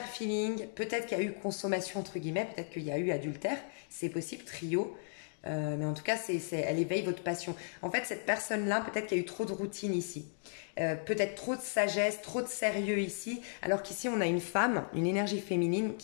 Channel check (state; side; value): silent; right; digital silence